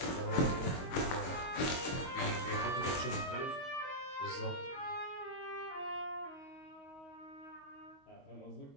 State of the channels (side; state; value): right; late; 22 ms